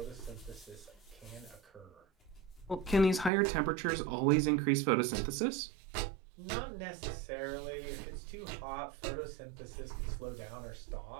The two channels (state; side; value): drops out; left; at 3.3 s